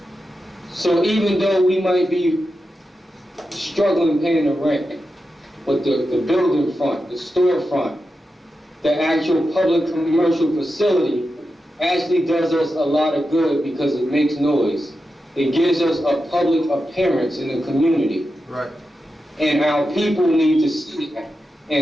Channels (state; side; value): normal; both; correlation 0.90